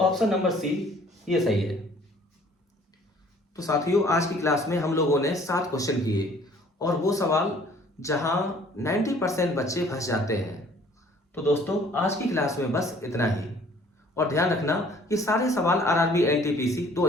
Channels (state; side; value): normal; both; correlation 0.56